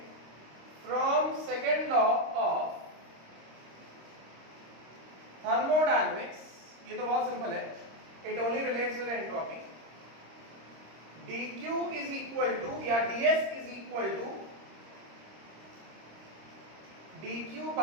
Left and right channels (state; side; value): late; left; 26 ms